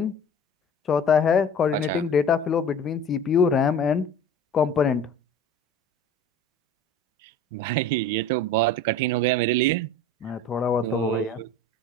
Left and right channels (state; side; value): normal; both; correlation 0.40